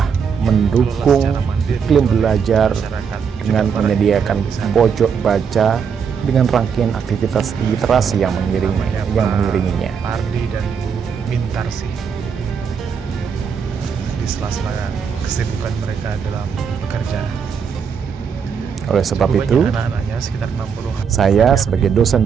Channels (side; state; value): left; quieter; 6.6 dB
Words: mendukung iklim belajar dengan menyediakan pojok baca dengan rangkaian aktivitas literasi yang mengiringinya. Pardi dan Bu Mintarsih di sela-sela kesibukan mereka dalam bekerja. Oleh sebab itu, saya sebagai dosen